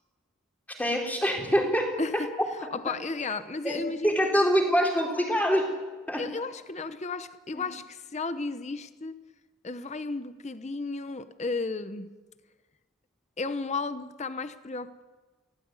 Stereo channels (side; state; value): both; normal; correlation 0.66